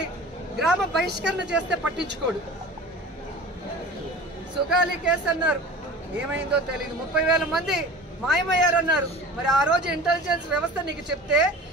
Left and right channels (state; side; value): normal; both; correlation 0.39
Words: గ్రామ బహిష్కరణ చేస్తే పట్టించుకోడు. సుగాలి కేసు అన్నారు, ఏమైందో తెలియదు. 30,000 మంది మాయమయ్యారన్నారు. మరి ఆ రోజు ఇంటెలిజెన్స్ వ్యవస్థ నీకు చెప్తే